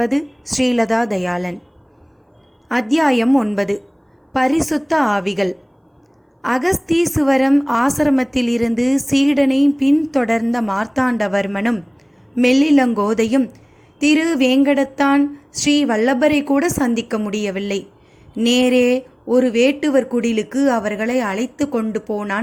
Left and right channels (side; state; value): both; identical; correlation 1.00